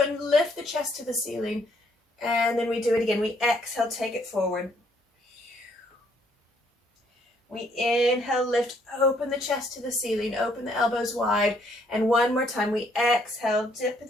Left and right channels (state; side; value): normal; both; correlation 0.67